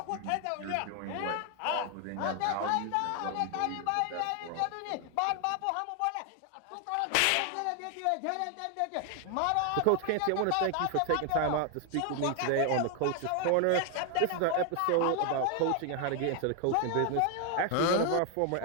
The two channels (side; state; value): both; different; correlation 0.01